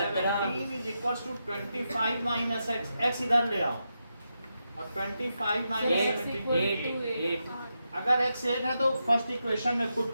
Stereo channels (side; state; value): both; inverted; correlation -0.86